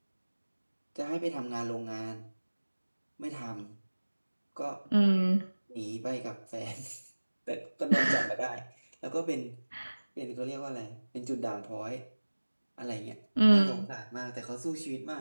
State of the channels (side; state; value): both; inverted; correlation -1.00